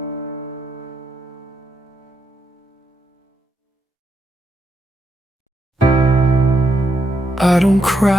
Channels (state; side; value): normal; both; correlation 0.81